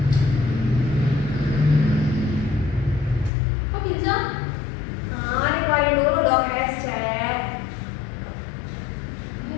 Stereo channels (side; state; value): right; drops out; at 3.3 s